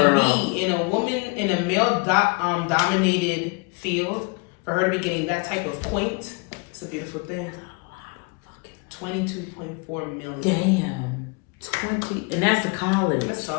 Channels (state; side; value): quieter; right; 31.4 dB